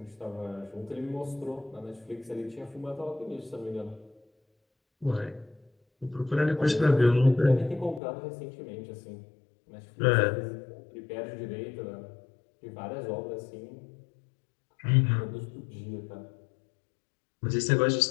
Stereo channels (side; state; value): right; drops out; at 8.0 s